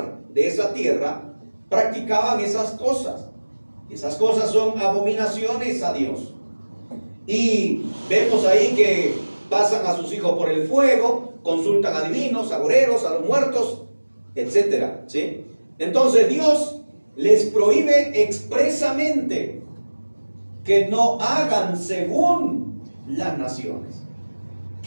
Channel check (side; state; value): both; inverted; correlation -1.00